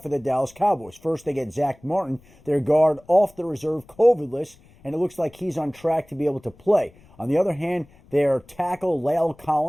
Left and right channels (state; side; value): noise; left; rumble, 27 dB below the sound